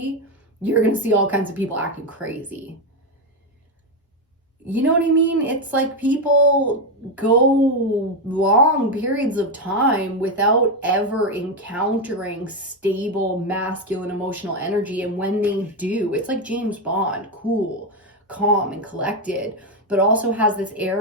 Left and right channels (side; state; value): both; normal; correlation 0.08